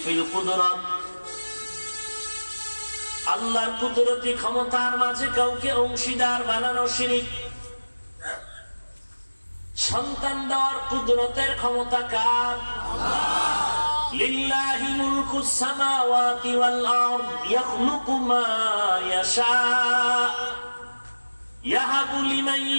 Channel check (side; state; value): both; inverted; correlation -1.00